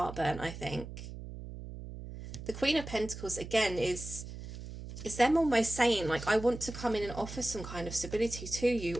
burnt, I think. The Queen of Pentacles, again, is them almost saying, like, I want to come in and offer some kind of stability to you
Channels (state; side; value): noise; right; hum, 11 dB below the sound